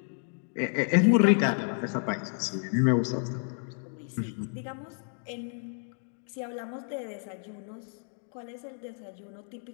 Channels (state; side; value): silent; right; 57 dB below the other